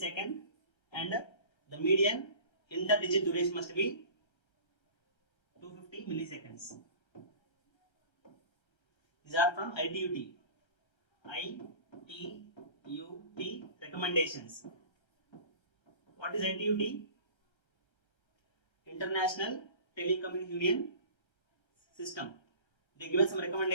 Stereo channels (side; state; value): right; late; 1.3 ms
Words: and the median interdigit duration must be 250 milliseconds. These are from ITUT. ITUT recommendations. What is ITUT? International Telecommunication Union System. They given some